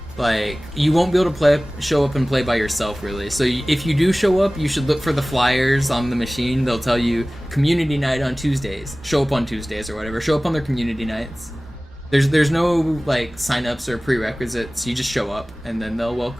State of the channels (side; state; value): both; normal; correlation 0.98